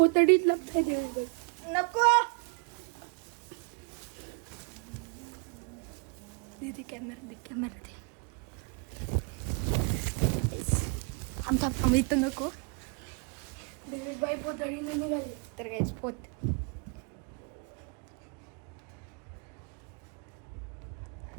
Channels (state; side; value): quieter; left; 35.6 dB